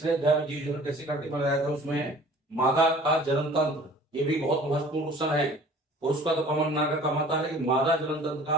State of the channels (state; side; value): normal; both; correlation 0.48